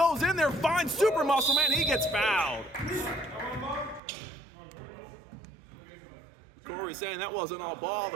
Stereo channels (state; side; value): drops out; left; at 4.0 s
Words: in there, finds Super Muscle Man. He gets fouled. Corey's saying that wasn't all ball.